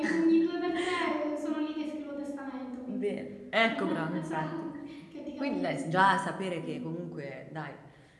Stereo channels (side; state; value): both; identical; correlation 1.00